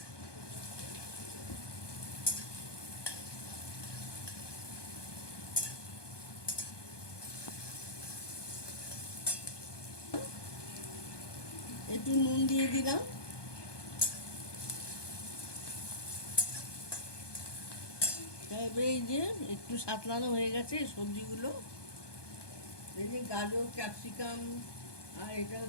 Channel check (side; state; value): right; late; 1.2 ms